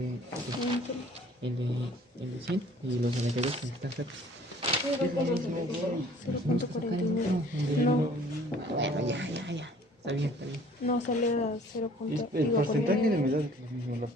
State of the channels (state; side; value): normal; both; correlation 0.54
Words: 100 y los 92 que están cerca. 0.49. No, Bueno, ya. Está bien, está bien. no sale a 0. El porcentaje de humedad es lo mismo, la